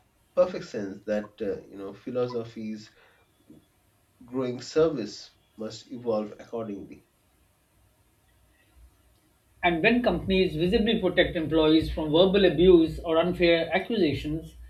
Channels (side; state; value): both; identical; correlation 1.00